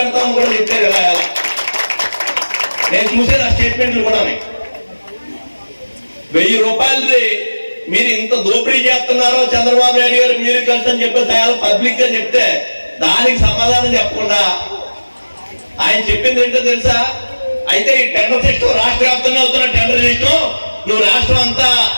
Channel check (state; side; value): inverted; both; correlation -1.00